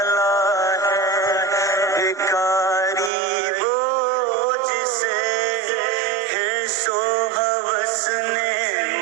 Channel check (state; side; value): drops out; left; at 3.1 s